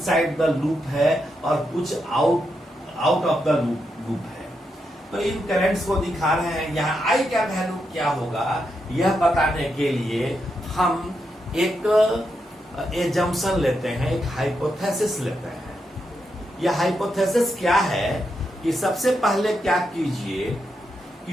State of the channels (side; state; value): both; normal; correlation 0.83